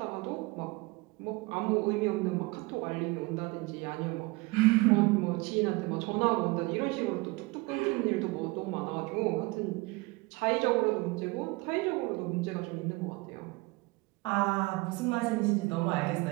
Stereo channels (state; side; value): quieter; left; 23.9 dB